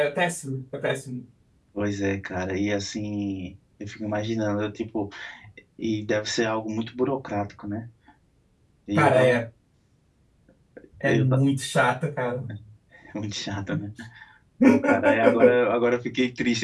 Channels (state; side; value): identical; both; correlation 1.00